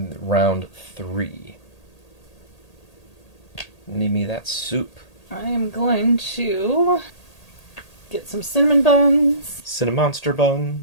round 3. Need me that soup. I am going to get some cinnamon buns. Cinnamonster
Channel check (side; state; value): right; late; 1.8 ms